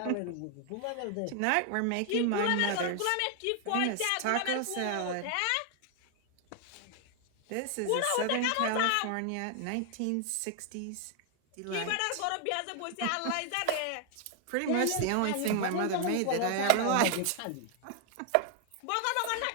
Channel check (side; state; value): both; different; correlation 0.00